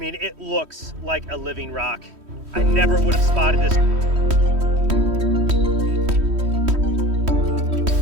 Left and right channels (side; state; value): left; late; 3.1 ms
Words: it looks like a living rock. I never would have spotted this.